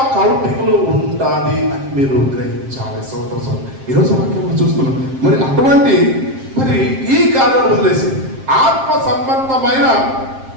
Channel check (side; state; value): left; late; 7.6 ms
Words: కౌంటింగ్లో ఉంటుంది అని మీరు గ్రహించాలి. సోదరు ఈరోజు వాక్యం చూస్తున్నాం. మరి అటువంటి ఈ కార్యాలు వదిలేసి ఆత్మ సంబంధమైన